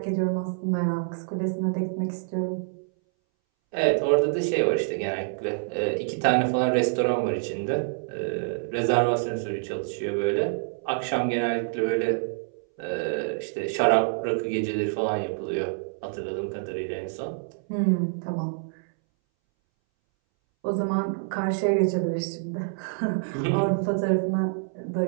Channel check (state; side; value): silent; left; 60 dB below the other